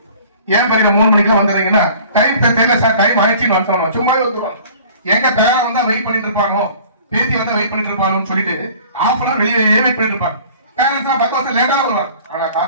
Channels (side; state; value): both; inverted; correlation -0.48